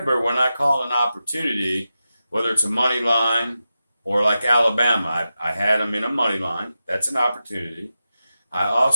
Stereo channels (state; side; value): inverted; both; correlation -0.91